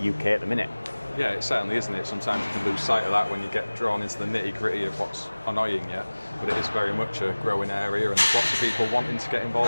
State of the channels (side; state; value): both; inverted; correlation -1.00